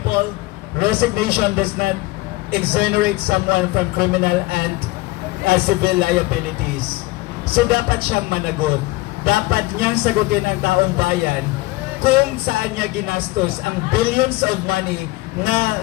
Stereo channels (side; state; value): right; quieter; 20.5 dB